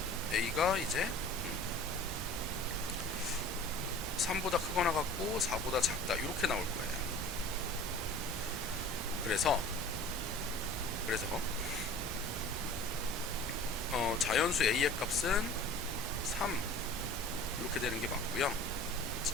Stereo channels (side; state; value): both; normal; correlation 0.43